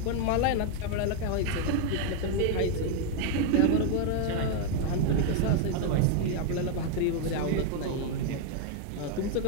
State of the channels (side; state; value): both; different; correlation 0.01